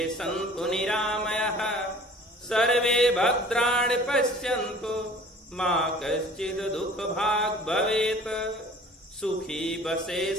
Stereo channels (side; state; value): both; normal; correlation 0.47